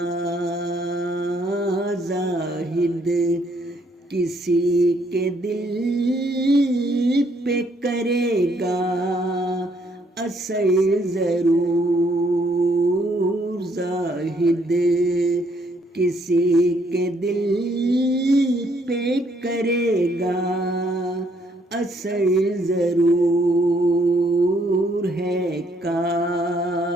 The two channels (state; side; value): normal; both; correlation 0.69